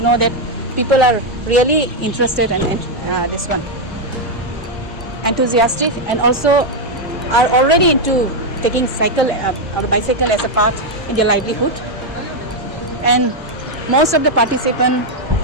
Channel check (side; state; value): both; normal; correlation 0.02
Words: know that people are really interested in this one, enthusiastic, and also are already into taking cycle or bicycle as a part in their livelihood. And most of the participants